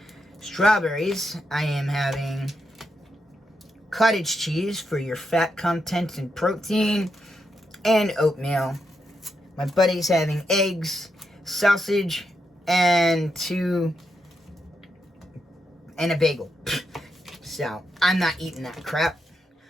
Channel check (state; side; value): normal; both; correlation 0.83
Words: I am having cottage cheese for your fat content and protein, and oatmeal. My buddy's having eggs, sausage, and a bagel. So, I'm not eating that crap.